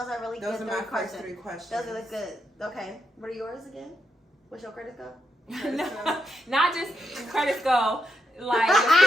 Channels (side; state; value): both; normal; correlation 0.82